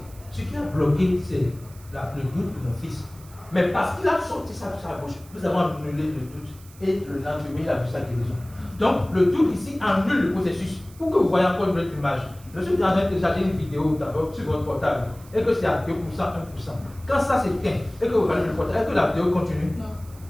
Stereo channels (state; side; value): noise; right; hiss, 23 dB below the sound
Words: Ce qui a bloqué, c'est le doute de mon fils. Mais parce qu'il a sorti ça de sa bouche, nous avons annulé le doute. Et le lendemain, il a vu sa guérison. Donc, le doute ici annule le processus. Pour que vous voyez encore une autre image. Je suis en train de télécharger une vidéo sur votre portable et que c'est à 2%, 1%. Quand ça s'éteint et que vous regardez le portable, est-ce que la vidéo continue? Non.